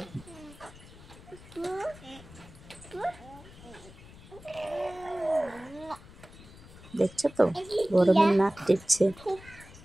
দেখছো তো গরমের নাক টিপছে।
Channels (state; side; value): noise; left; rumble, 19 dB below the sound